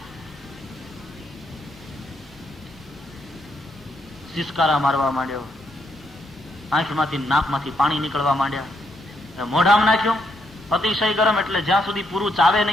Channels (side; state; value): both; normal; correlation 0.76